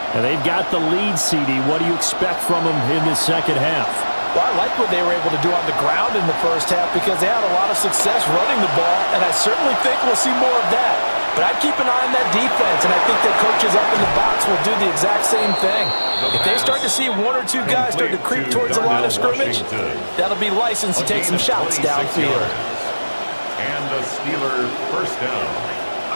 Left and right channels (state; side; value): inverted; both; correlation -1.00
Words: And they've got the lead, CD. What do you expect from them in the 2nd half? Well, I like what they were able to do on the ground in the 1st half because they had a lot of success running the ball, and I certainly think we'll see more of that. But I'd keep an eye on that defense, and I think their coaches up in the box will do the exact same thing. If they start to see 1 or 2 guys start to creep towards the line of scrimmage, that'll be licensed to take some shots downfield. And the Steelers 1st down.